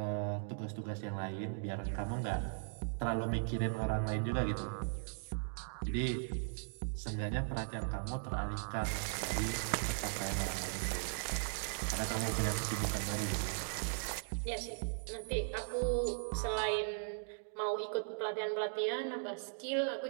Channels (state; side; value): silent; left; digital silence